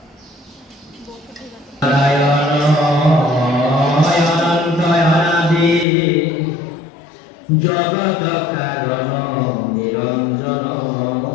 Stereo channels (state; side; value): drops out; right; at 5.9 s